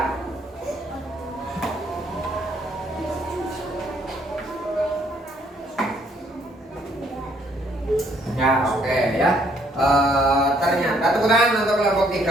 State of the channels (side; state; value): both; normal; correlation 0.66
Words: Ya, oke ya. Ternyata tepuk tangan untuk kelompok